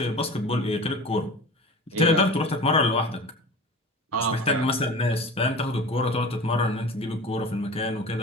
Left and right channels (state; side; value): normal; both; correlation 0.36